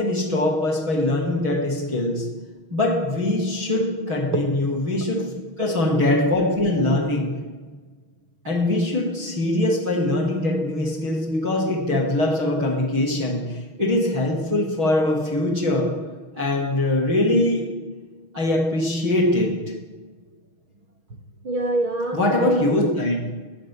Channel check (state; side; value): late; left; 6.3 ms